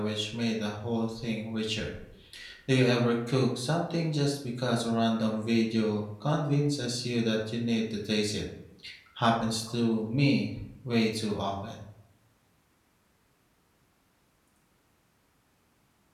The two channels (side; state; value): both; identical; correlation 1.00